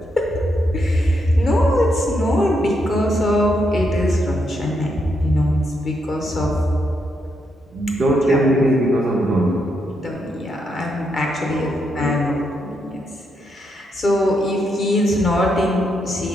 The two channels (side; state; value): both; normal; correlation 0.80